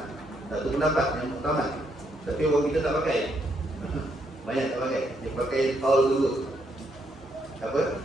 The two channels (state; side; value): normal; both; correlation 0.75